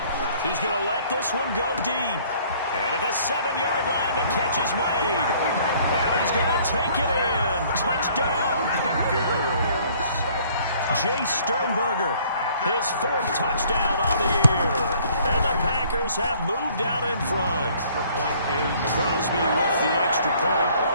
He's going to let this one go deep. And at the 7-yard line, the catch is made. And he's going to take it in. Touchdown, Packers. Jay Sternberger, his 4th touchdown on the year. And the Packers have moved out in front. Crosby with the extra point.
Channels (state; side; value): inverted; both; correlation -0.58